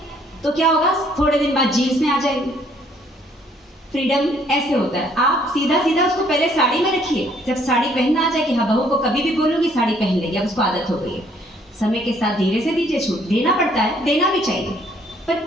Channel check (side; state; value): both; normal; correlation 0.64